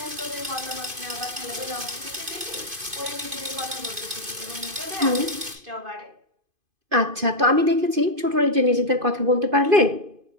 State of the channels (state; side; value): late; left; 2.5 ms